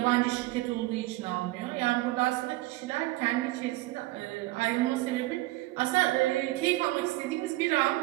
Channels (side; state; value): left; quieter; 19.2 dB